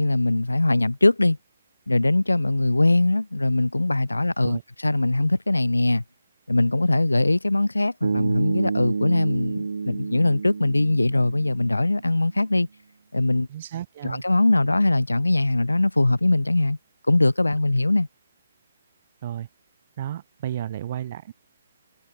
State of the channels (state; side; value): inverted; both; correlation -0.98